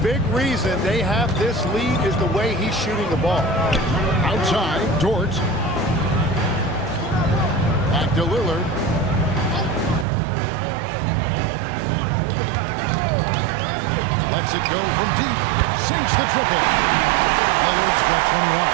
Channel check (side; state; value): left; drops out; at 10.1 s